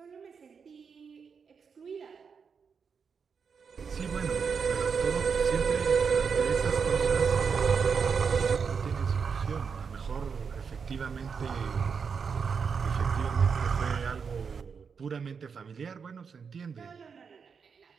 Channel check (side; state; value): left; quieter; 6.0 dB